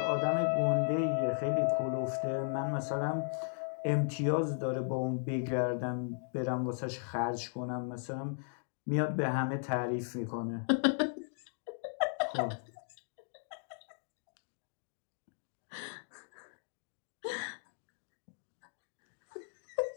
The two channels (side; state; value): right; silent; digital silence